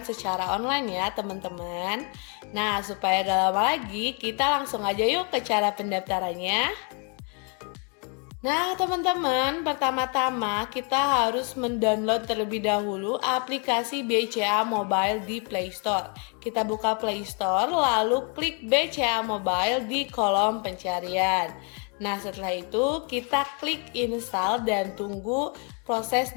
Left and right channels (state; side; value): quieter; right; 37.1 dB